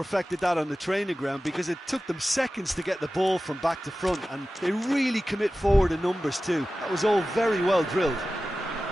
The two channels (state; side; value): normal; both; correlation 0.95